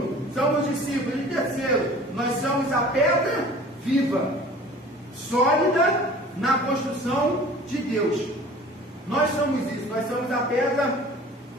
somos discípulos. E terceiro, nós somos a pedra viva, sólida na construção de Deus. Nós somos isso, nós somos a pedra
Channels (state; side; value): normal; both; correlation 0.45